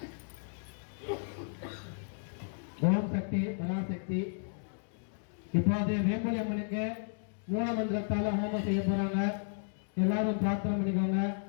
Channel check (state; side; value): silent; right; digital silence